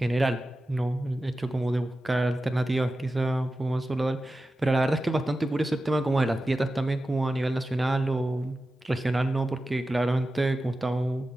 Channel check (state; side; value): normal; both; correlation 0.93